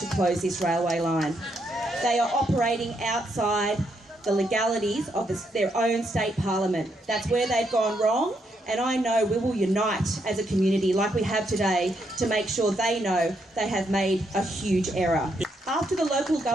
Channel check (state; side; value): normal; both; correlation 0.77